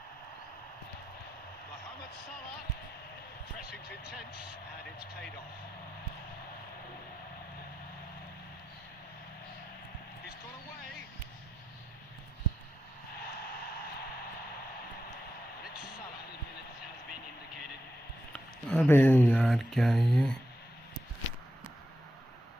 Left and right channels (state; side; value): normal; both; correlation 0.88